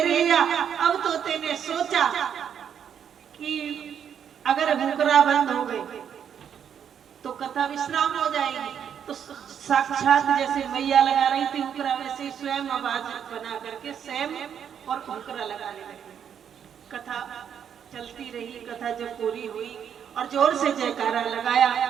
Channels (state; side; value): quieter; left; 8.4 dB